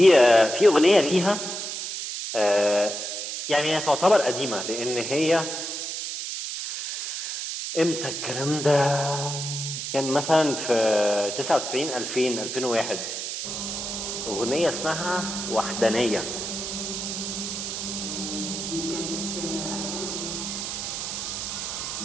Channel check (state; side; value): noise; right; hiss, 5 dB below the sound